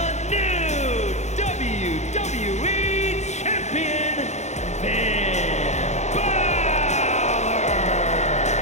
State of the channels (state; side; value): late; right; 0.33 ms